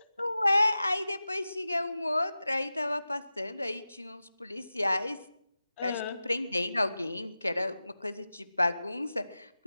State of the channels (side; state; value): both; inverted; correlation -0.95